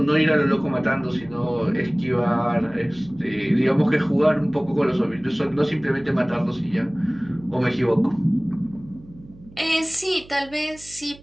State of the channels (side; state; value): right; noise; hum, 22 dB below the sound